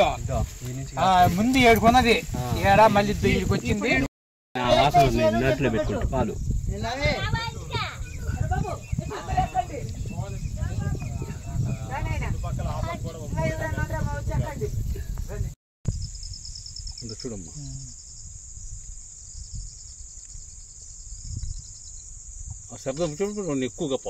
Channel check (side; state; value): both; identical; correlation 1.00